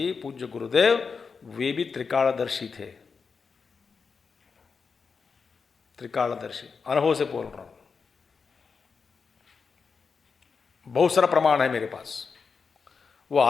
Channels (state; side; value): quieter; right; 5.3 dB